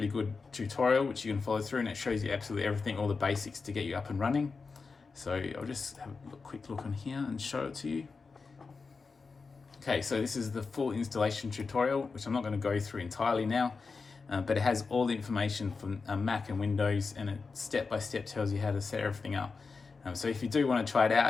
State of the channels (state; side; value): quieter; right; 4.6 dB